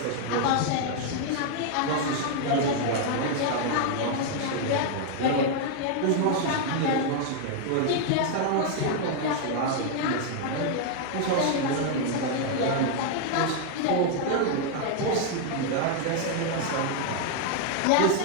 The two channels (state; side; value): different; both; correlation 0.00